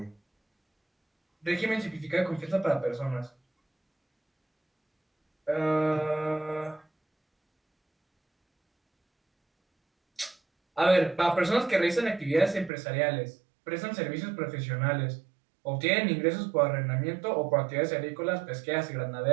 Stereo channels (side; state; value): left; drops out; at 12.7 s